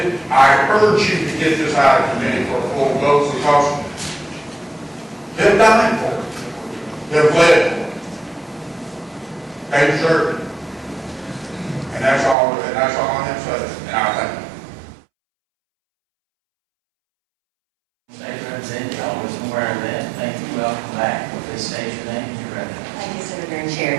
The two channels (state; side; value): drops out; left; at 12.4 s